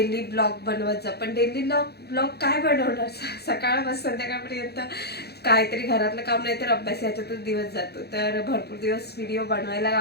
ब्लॉग बनवत जा, पण डेली ब्लॉग काय बनवणार सकाळपासून संध्याकाळपर्यंत काहीतरी घरातलं काम नाही तर अभ्यास याच्यातच दिवस जातो. तर भरपूर दिवस व्हिडिओ बनवायला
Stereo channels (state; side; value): late; right; 0.47 ms